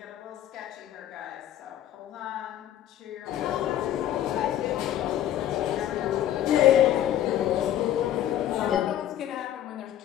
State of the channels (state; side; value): quieter; right; 11.8 dB